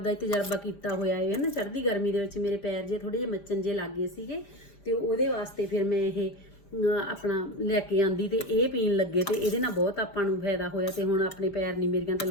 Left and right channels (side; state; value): right; late; 5.0 ms